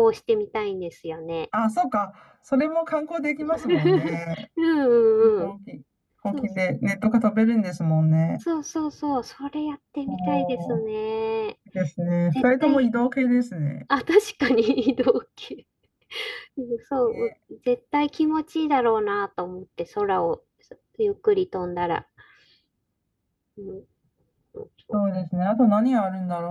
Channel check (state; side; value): identical; both; correlation 1.00